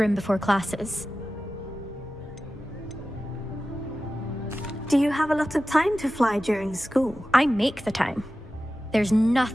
before classes. Do you have a lot of time to fly during school? I make the time. There's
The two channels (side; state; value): both; normal; correlation 0.94